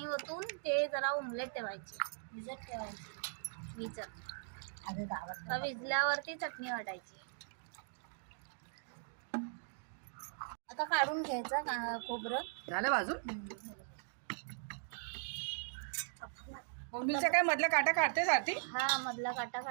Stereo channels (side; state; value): left; silent; digital silence